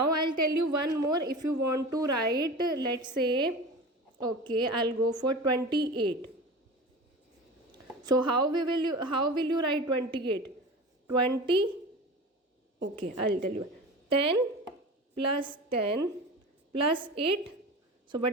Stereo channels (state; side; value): normal; both; correlation 0.33